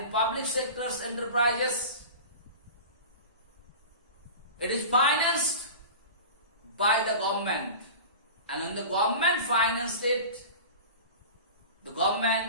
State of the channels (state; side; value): inverted; both; correlation -0.34